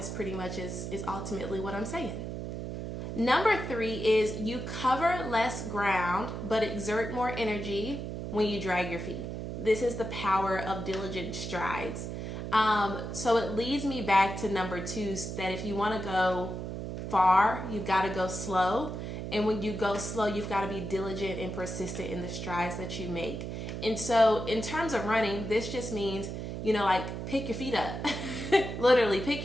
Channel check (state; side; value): noise; right; hum, 6 dB below the sound